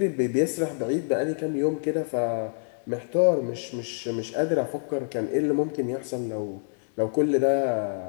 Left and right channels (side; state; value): right; silent; digital silence